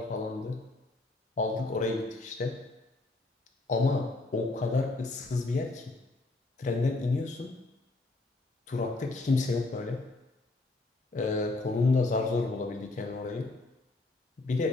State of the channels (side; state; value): right; quieter; 3.1 dB